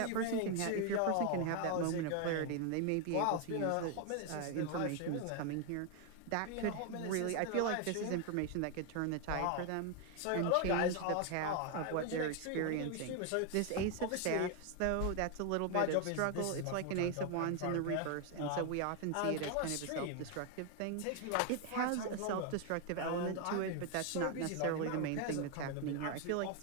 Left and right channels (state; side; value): different; both; correlation 0.01